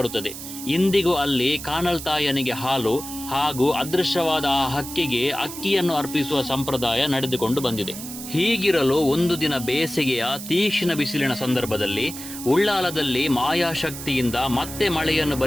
ಇಂದಿಗೂ ಅಲ್ಲಿ ಕಾನಲ್ತಾಯನಿಗೆ ಹಾಲು ಹಾಗೂ ಅದೃಶ್ಯವಾದ ಆ ಹಕ್ಕಿಗೆ ಅಕ್ಕಿಯನ್ನು ಅರ್ಪಿಸುವ ಸಂಪ್ರದಾಯ ನಡೆದುಕೊಂಡು ಬಂದಿದೆ. ಹೀಗಿರಲು ಒಂದು ದಿನ ಬೇಸಿಗೆಯ ತೀಕ್ಷ್ಣ ಬಿಸಿಲಿನ ಸಂದರ್ಭದಲ್ಲಿ ಉಳ್ಳಾಲದಲ್ಲಿ ಮಾಯಾಶಕ್ತಿಯಿಂದ ಮತ್ತೆ ಮಳೆಯನ್ನು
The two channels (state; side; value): noise; right; hiss, 10 dB below the sound